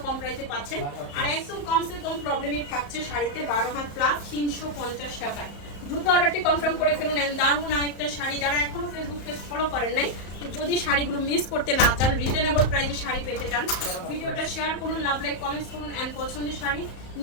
কম প্রাইসে পাচ্ছেন। আর একদম কমসে কম প্রবলেমই থাকছে শাড়িতে, 12 হাত প্লাস 350 টাকায়। দ্রুত অর্ডারটি কনফার্ম করে ফেলুন। দারুণ আরেকটা শাড়ি, যারা এখনো ফেসবুক পেজ ফলো করেন নাই, যদি শাড়িগুলো মিস করতে না চান, রিজনেবল প্রাইসে শাড়ি পেতে চান, ভিডিওটা শেয়ার করুন, লাভ লাইক কমেন্টস করুন, এন্ড পছন্দের শাড়ি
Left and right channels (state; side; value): late; right; 34 ms